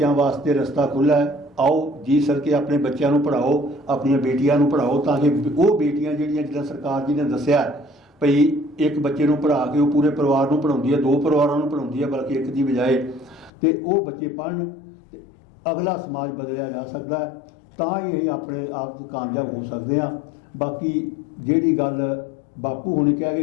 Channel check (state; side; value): drops out; right; at 13.5 s